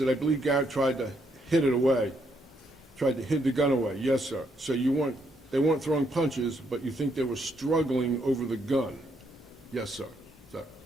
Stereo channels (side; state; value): both; normal; correlation 0.74